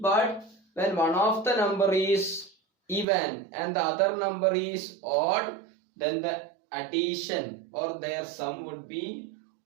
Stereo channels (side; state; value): left; drops out; at 3.1 s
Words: when one of the number is even and the other number is odd, then the addition or their sum would be